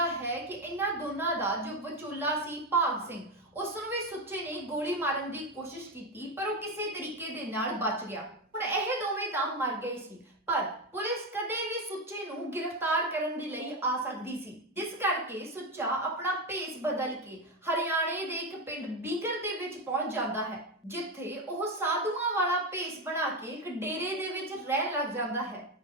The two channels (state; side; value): normal; both; correlation 0.13